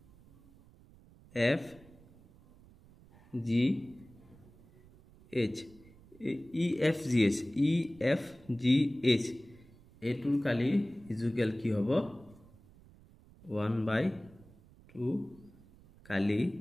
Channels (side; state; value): right; noise; rumble, 25 dB below the sound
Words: F G H E F G H এটোৰ কালি ইজুকেল কি হ'ব 1/2 কালি